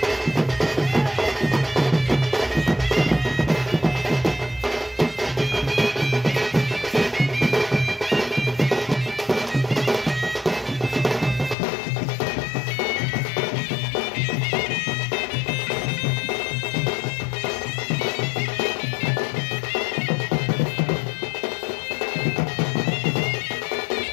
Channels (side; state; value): right; drops out; at 11.6 s